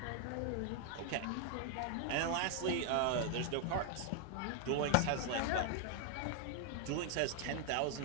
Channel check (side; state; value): both; different; correlation 0.00